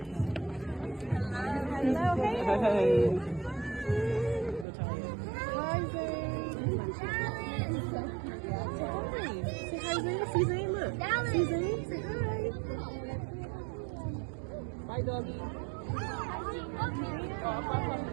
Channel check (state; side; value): drops out; left; at 4.7 s